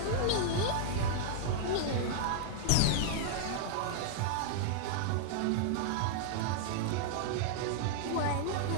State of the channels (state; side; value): different; both; correlation -0.01